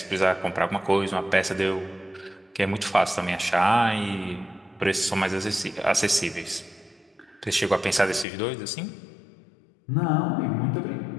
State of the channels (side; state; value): right; drops out; at 8.2 s